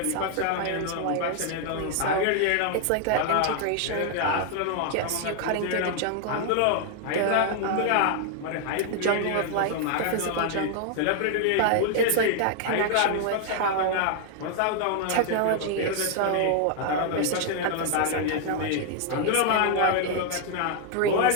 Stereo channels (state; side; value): different; both; correlation 0.00